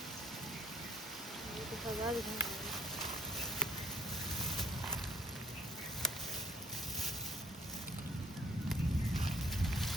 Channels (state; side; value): normal; both; correlation 0.59